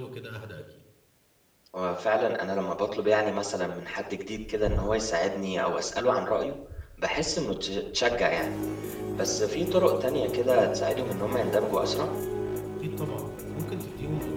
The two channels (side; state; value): both; identical; correlation 1.00